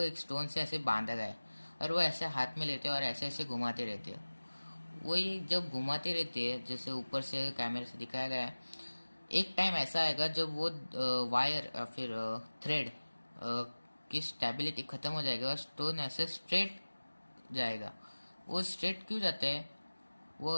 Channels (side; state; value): both; inverted; correlation -1.00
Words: एक स्टोन से ऐसे बांधा गया है, और वो ऐसे हाथ में लेते हैं और ऐसे ऐसे घुमाते रहते हैं। वही जब घुमाते रहते हैं, जैसे ऊपर से कैमरे से दिखाया गया है, एक टाइम ऐसा आएगा जब वो वायर या फिर थ्रेड की स्टेबिलिटी खत्म हो जाएगा और स्टोन ऐसे स्ट्रेट जाएगा। वो स्ट्रेट क्यों जाता है, वो